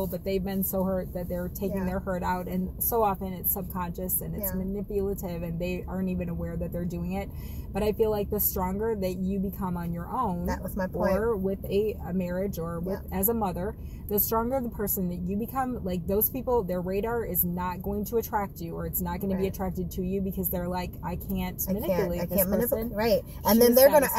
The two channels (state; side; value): identical; both; correlation 1.00